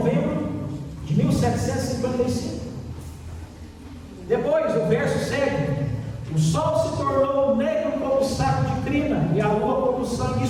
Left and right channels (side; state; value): both; identical; correlation 1.00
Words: de 1755. Depois, o verso segue. O sol se tornou negro como saco de crina e a lua como sangue.